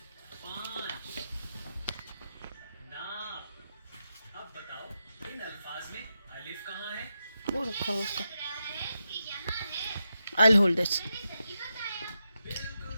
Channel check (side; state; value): both; inverted; correlation -0.87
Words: 5 नाप। अब बताओ इन अल्फाज में अलिफ कहाँ है? वो रखा हुआ उसका। I'll hold this. बिल्कुल